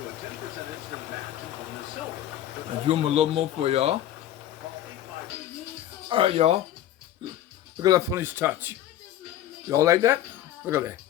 I'll do them a little more for y'all. Alright, y'all. Look at that funny touch. Y'all like that? Look at that.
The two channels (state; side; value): quieter; right; 12.3 dB